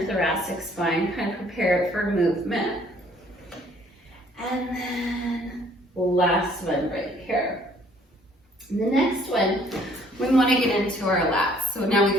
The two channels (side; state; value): both; normal; correlation 0.60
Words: thoracic spine, kind of prepare it for movement. And then last one right here. And the next one, we want to get into our lats. So now